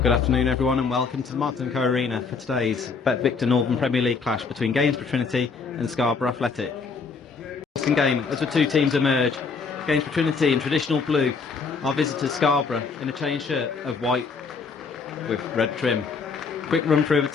afternoon everyone and welcome to the Martin & Co Arena for today's Bet Victor Northern Premier League clash between Gainsborough Trinity and Scarborough Athletic. Interesting game as the two teams emerge. Gainsborough Trinity in traditional blue, our visitors Scarborough in a chain shirt of white with red trim. Quick run through of the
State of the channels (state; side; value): quieter; right; 5.0 dB